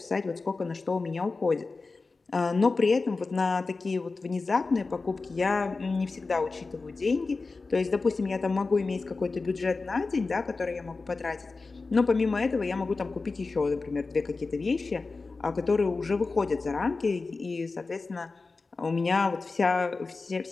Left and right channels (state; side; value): quieter; right; 3.9 dB